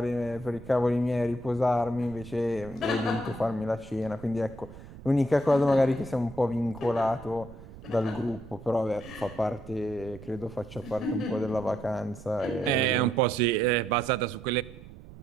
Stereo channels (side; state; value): right; noise; rumble, 17 dB below the sound